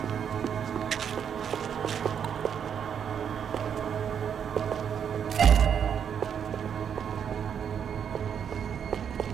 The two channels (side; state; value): left; quieter; 8.0 dB